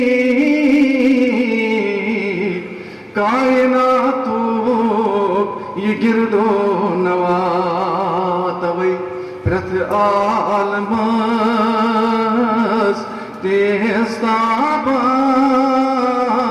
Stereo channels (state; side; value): identical; both; correlation 1.00